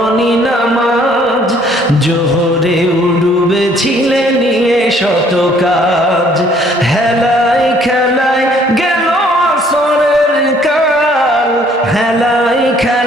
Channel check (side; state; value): both; normal; correlation 0.61